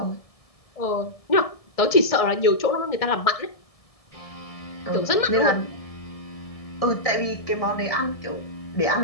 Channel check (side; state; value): right; late; 1.6 ms